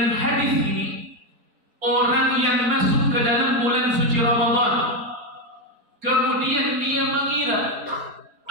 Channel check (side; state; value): left; late; 4.3 ms